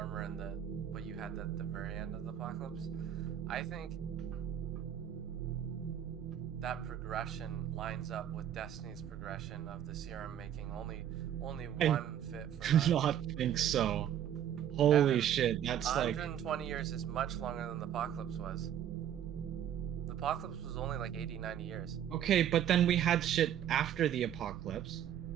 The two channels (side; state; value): left; quieter; 10.2 dB